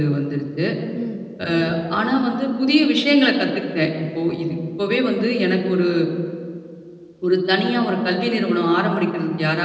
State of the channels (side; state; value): both; identical; correlation 1.00